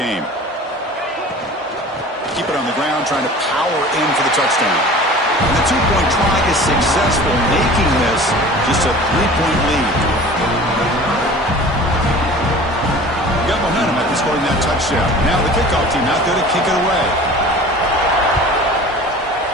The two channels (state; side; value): normal; both; correlation 0.41